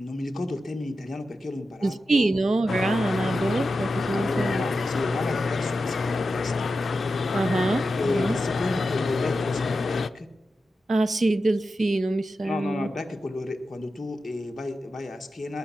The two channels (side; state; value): both; normal; correlation 0.90